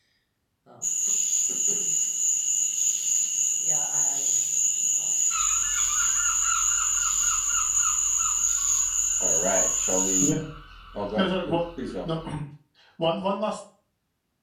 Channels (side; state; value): both; identical; correlation 1.00